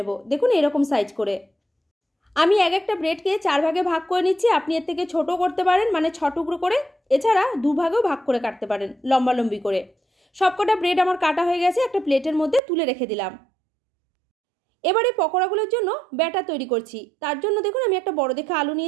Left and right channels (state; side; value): drops out; left; at 12.6 s